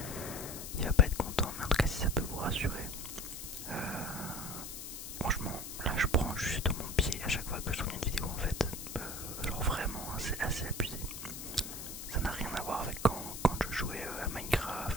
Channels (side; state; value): left; noise; hiss, 9 dB below the sound